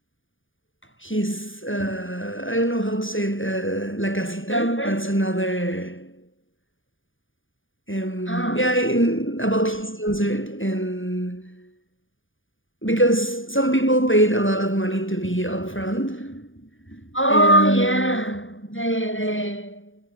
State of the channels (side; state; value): right; late; 0.57 ms